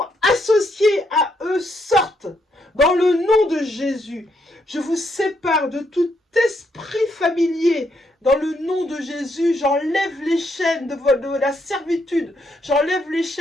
associés à eux sortent dans le nom de Jésus. Je vous sépare de tout esprit familier dans le nom de Jésus. J'enlève les chaînes de la servitude, j'enlève les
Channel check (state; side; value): normal; both; correlation 0.76